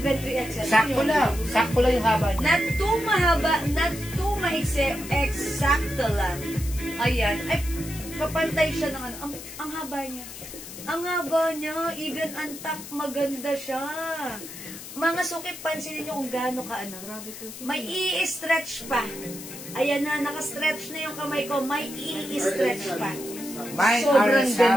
3XL. Sakto lang. Sakto lang yung haba niya. Not too mahaba, not too maiksi, eksakto lang. Ayan. Ay, kapantay siya ng ano. Ang haba niya. Ang haba niya, even ang top, maganda siya. Mga suki, pansinin niyo kung gaano ka ano. May i-stretch pa. Ayan na, naka-stretch na yung kamay ko. May i-stretch pa. Mine Sobrang RL ganda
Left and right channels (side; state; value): left; noise; hiss, 12 dB below the sound